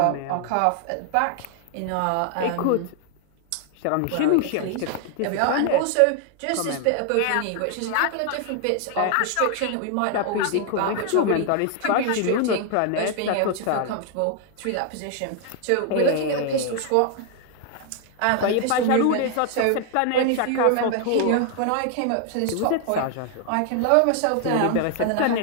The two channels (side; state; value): both; different; correlation 0.00